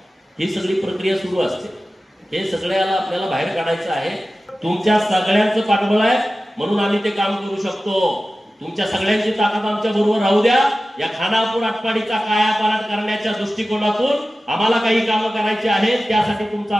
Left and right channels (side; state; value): both; normal; correlation 0.95